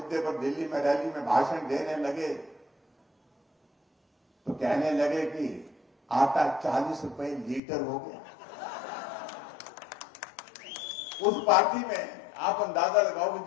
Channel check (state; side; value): drops out; right; at 7.6 s